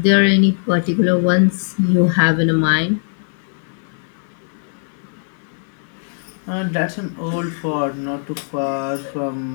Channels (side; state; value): right; silent; 63 dB below the other